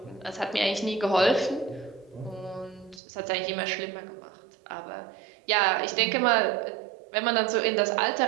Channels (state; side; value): drops out; left; at 3.0 s